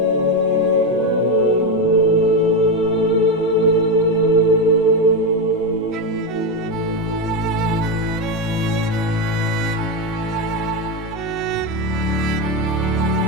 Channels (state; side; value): normal; both; correlation 0.11